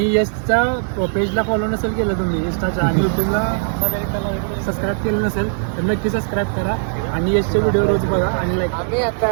यशच्या पेजला फॉलो नसेल केलं तुम्ही इंस्टाच्या आणि यूट्यूबला सबस्क्राईब केलं नसेल तर नक्की सबस्क्राईब करा आणि यशचे व्हिडिओ रोज बघा आणि लाईक. आम्ही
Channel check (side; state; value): left; silent; digital silence